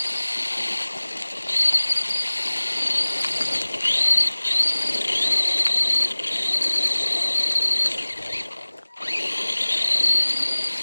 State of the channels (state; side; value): inverted; both; correlation -1.00